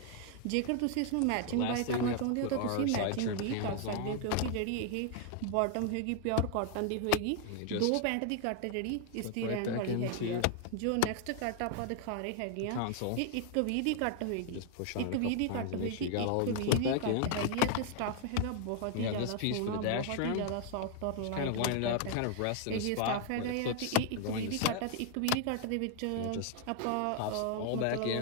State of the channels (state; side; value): different; both; correlation 0.00